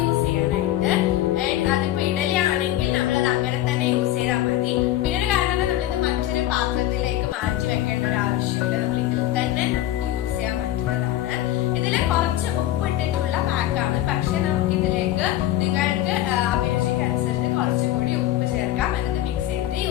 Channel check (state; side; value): quieter; right; 13.9 dB